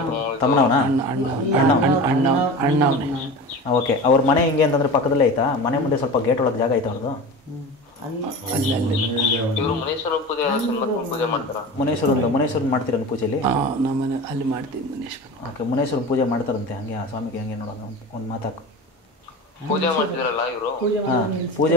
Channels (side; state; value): both; normal; correlation 0.32